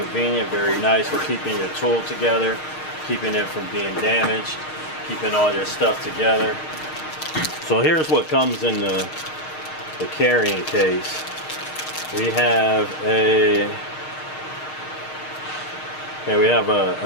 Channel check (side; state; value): right; late; 6.5 ms